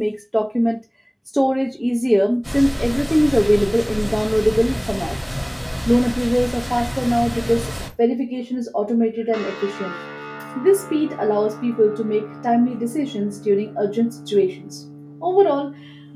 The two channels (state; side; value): identical; both; correlation 1.00